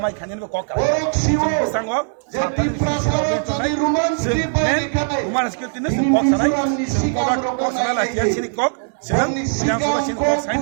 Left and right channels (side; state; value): left; silent; digital silence